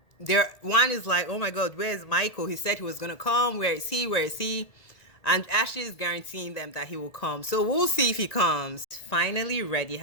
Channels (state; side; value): late; right; 1.8 ms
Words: is like, oh my God, where's Michael? He said he was going to come. Where is he? Where is he? And Ashley is guaranteeing them that he will come. So we'll see if he comes. Finally ready.